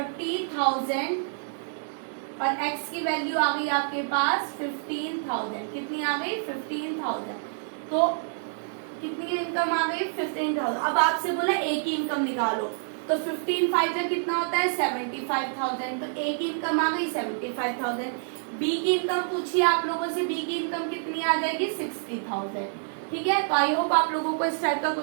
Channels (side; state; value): left; silent; 60 dB below the other